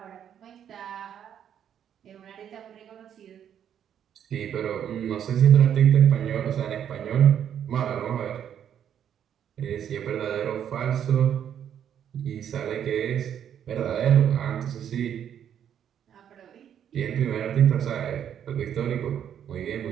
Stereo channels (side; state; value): left; quieter; 9.3 dB